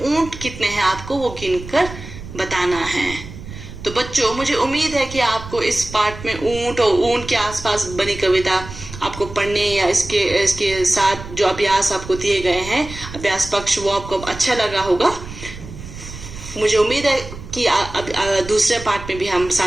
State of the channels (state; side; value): noise; right; rumble, 13 dB below the sound